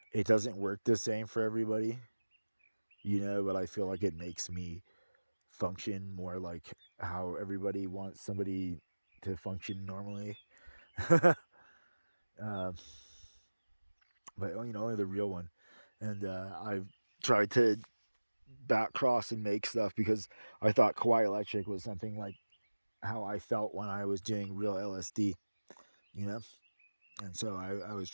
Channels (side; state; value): both; inverted; correlation -1.00